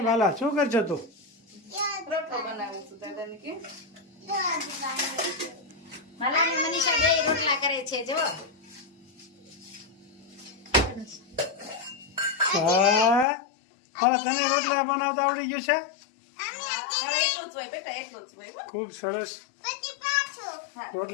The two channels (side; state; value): right; drops out; at 13.2 s